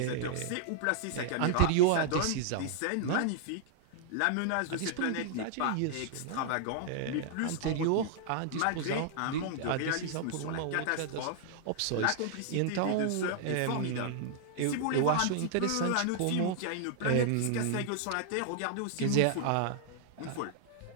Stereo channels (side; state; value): both; different; correlation -0.01